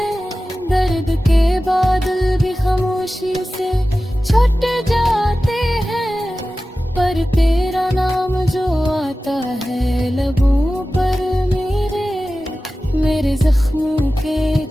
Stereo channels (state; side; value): normal; both; correlation 0.95